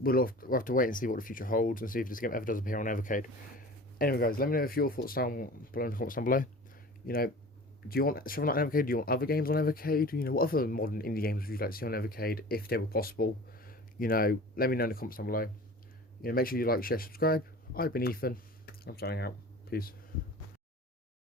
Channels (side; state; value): both; normal; correlation 0.40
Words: have to wait and see what the future holds and see if this game ever does appear on Evercade. Anyway, guys, let me know if your thoughts down below in the comments down below. Do you want Shovel Knight on Evercade? Do you want other games on Evercade? What other modern indie games would you like to see on Evercade if they were possible? Let me know in the comments down below. Make sure you like, share, subscribe. I've been Ethan. I'm signing out. Peace.